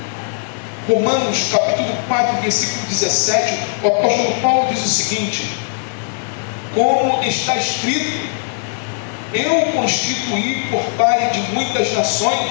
Romanos capítulo 4, versículo 17, o apóstolo Paulo diz o seguinte: como está escrito, eu constituí por pai de muitas nações,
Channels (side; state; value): right; silent; digital silence